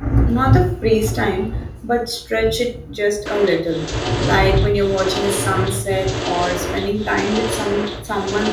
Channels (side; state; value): both; identical; correlation 1.00